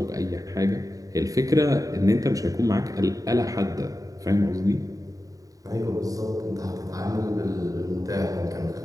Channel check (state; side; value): late; left; 0.17 ms